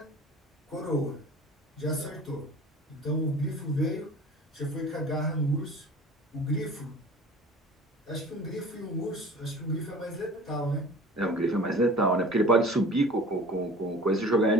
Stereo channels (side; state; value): both; normal; correlation 0.43